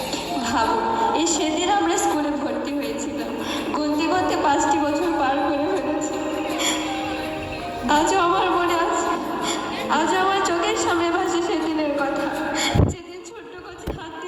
ভাবুন, এই সেদিন আমরা স্কুলে ভর্তি হয়েছিলাম, গুনতে গুনতে 5টি বছর পার করে ফেলেছি। আজও আমার মনে আছে, আজও আমার চোখের সামনে ভাসে সেদিনের কথা, যেদিন ছোট্ট কচি হাত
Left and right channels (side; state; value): both; identical; correlation 1.00